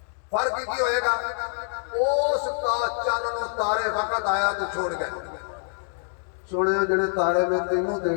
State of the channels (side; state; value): right; silent; digital silence